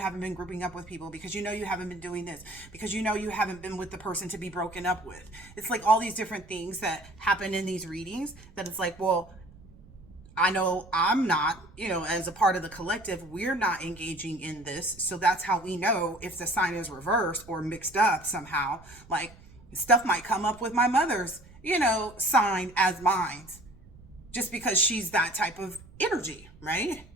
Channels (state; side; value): noise; right; rumble, 22 dB below the sound